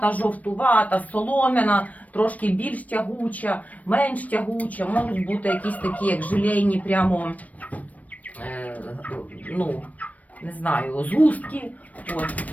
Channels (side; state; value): right; late; 0.071 ms